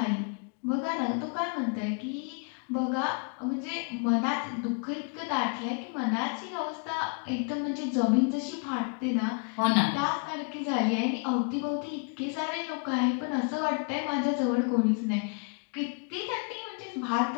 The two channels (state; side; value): quieter; right; 37.2 dB